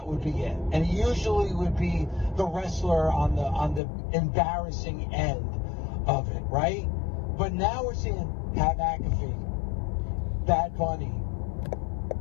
would be it. And it usually would be the wrestler on the embarrassing end of it, right? But now we're seeing Pat McAfee, Bad Bunny,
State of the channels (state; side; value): drops out; right; at 3.8 s